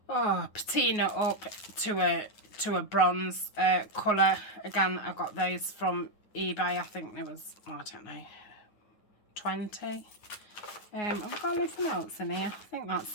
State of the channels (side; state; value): right; late; 9.5 ms